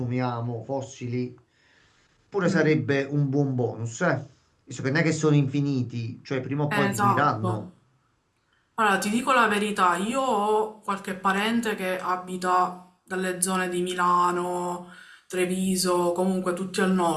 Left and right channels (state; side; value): identical; both; correlation 1.00